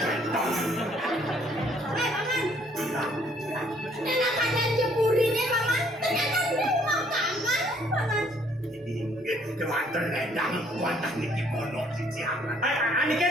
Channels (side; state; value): both; normal; correlation 0.64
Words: Nenek kalian jemurinnya paman, ternyata dia makanan paman. Kewater ledang, wadah niki pondok di Ciaman. Ani kan